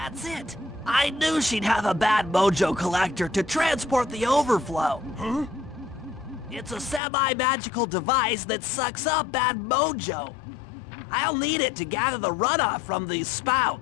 it! I knew she'd have a bad mojo collector to transport the overflow. Huh? It's a semi-magical device that sucks up bad mojo. I'll need it to gather the runoff from these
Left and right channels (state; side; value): drops out; right; at 7.0 s